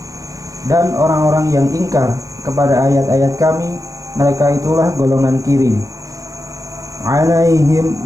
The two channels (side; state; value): left; late; 0.16 ms